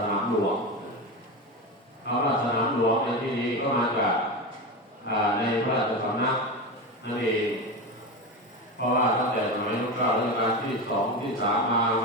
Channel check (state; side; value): normal; both; correlation 0.20